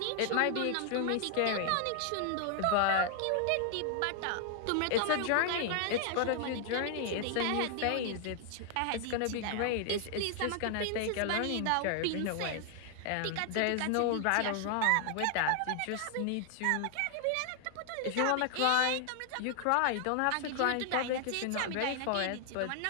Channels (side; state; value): both; different; correlation 0.00